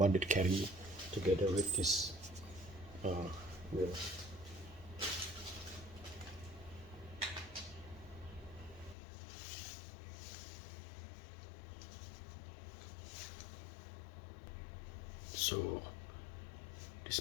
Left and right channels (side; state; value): right; drops out; at 9.0 s